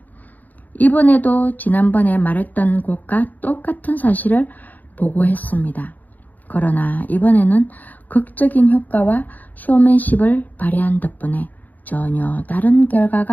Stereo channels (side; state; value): right; late; 0.082 ms